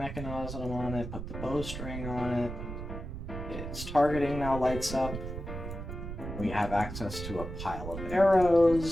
on it, put the bowstring on it. Its targeting now lights up. We have access to a pile of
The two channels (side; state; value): right; noise; rumble, 8 dB below the sound